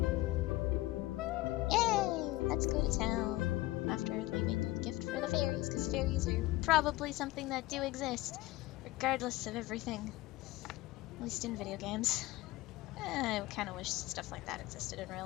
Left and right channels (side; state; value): right; quieter; 18.3 dB